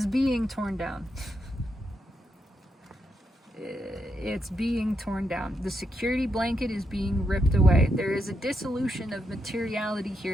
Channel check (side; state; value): both; normal; correlation 0.82